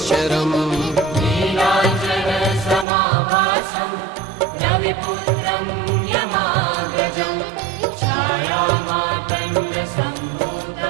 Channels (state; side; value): drops out; left; at 2.9 s